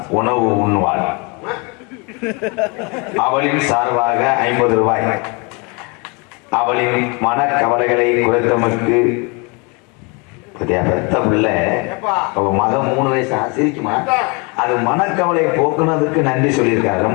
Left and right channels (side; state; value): right; quieter; 30.8 dB